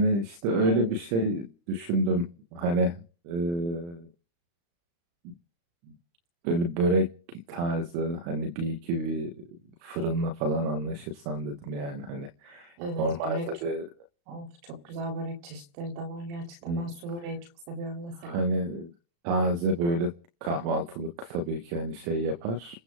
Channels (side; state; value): left; late; 35 ms